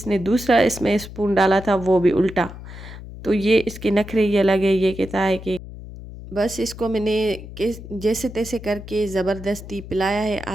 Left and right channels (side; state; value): left; noise; hum, 13 dB below the sound